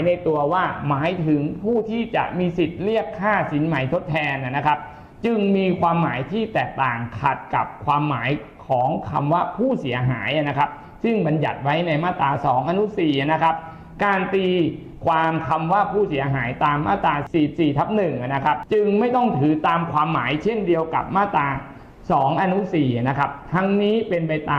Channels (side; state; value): both; identical; correlation 1.00